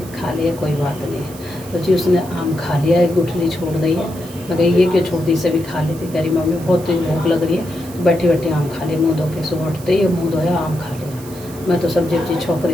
कोई बात नहीं है। तो जी उसने आम खा लिया, एक गुठली छोड़ दी है। मैं कही ये क्यों छोड़ दी, सभी खा लेती। कह रही मम्मी बहुत तेज भूख लग रही है, तो बैठी बैठी आम खा लिया मुँह धो के। सुबह उठते ही मुँह धोया, आम खा लिया। मैं तो सब्जी वब्जी छोंक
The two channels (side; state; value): right; noise; hiss, 18 dB below the sound